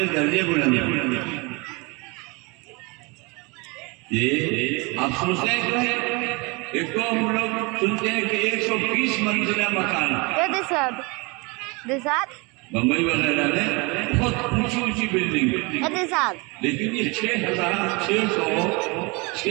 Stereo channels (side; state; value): left; quieter; 28.1 dB